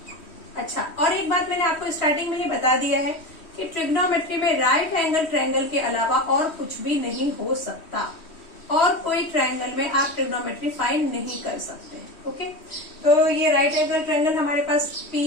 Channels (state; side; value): late; right; 3.1 ms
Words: अच्छा, और एक बात मैंने आपको स्टार्टिंग में ही बता दिया है कि ट्रिग्नोमेट्री में राइट एंगल ट्रायंगल के अलावा और कुछ भी नहीं हो सकता और कोई ट्रायंगल में आप ट्रिग्नोमेट्री फाइंड नहीं कर सकते। ओके, तो ये राइट एंगल ट्रायंगल हमारे पास P